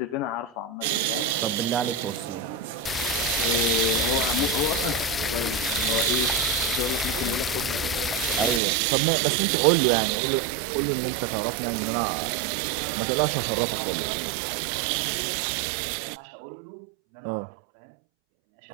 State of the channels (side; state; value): left; drops out; at 8.6 s